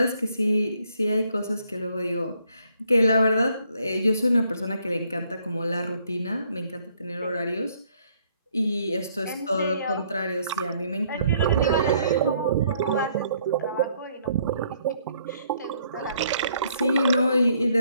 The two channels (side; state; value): both; inverted; correlation -0.67